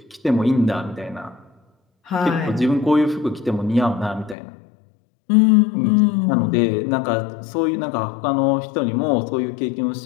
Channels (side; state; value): right; drops out; at 4.4 s